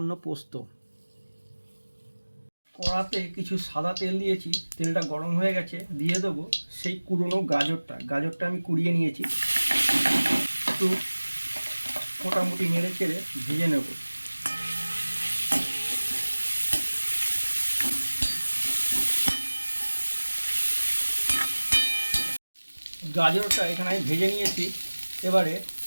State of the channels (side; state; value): both; inverted; correlation -1.00